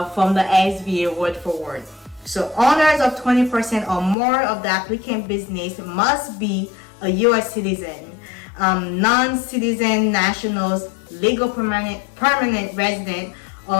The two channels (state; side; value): drops out; right; at 4.2 s